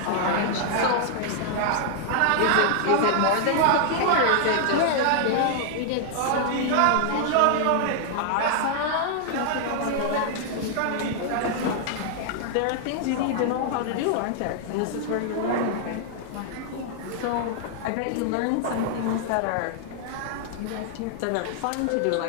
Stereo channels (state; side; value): different; both; correlation 0.00